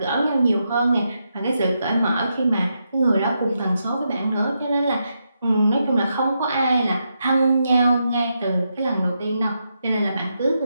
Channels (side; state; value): both; inverted; correlation -0.83